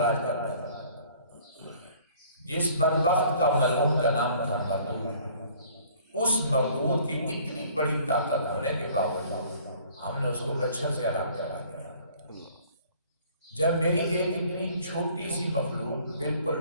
کرتا تھا۔ جس بدبخت کا ملعون کا نام تھا مردود، اس مردود کی اتنی بڑی طاقت ہونے کے باوجود ہم نے اس کو مچھر سے الگ کرا دیا۔ جب میری ایک اتنی چھوٹی سی مخلوق،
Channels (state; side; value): inverted; both; correlation -0.55